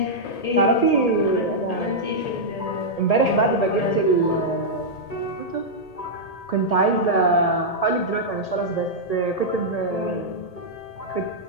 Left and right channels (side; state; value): right; late; 1.8 ms